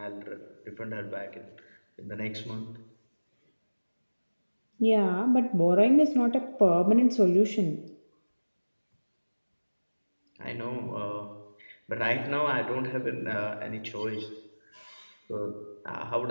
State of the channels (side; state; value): both; inverted; correlation -1.00